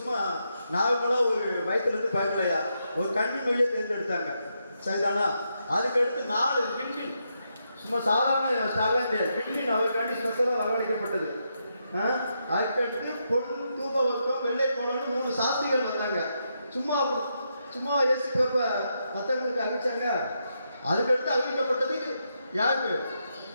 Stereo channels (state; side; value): inverted; both; correlation -0.82